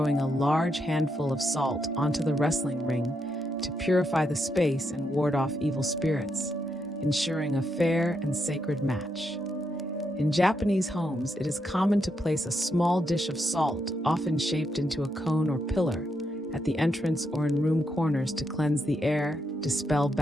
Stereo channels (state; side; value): normal; both; correlation 0.80